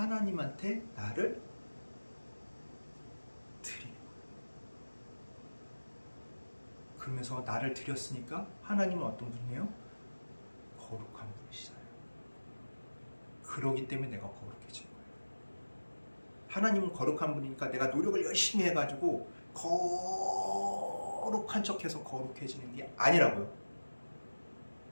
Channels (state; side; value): inverted; both; correlation -1.00